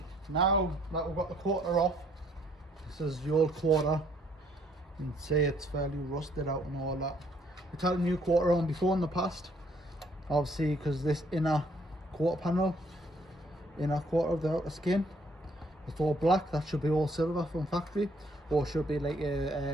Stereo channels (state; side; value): normal; both; correlation 0.65